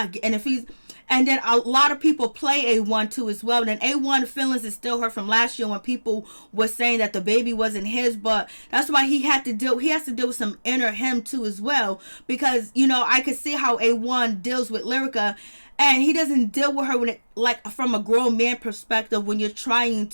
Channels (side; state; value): both; inverted; correlation -1.00